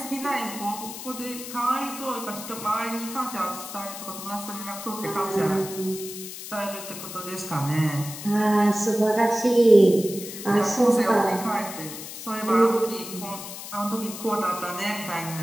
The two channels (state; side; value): noise; left; hiss, 10 dB below the sound